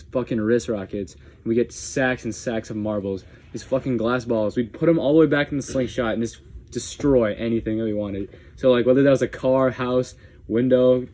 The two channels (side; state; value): both; identical; correlation 1.00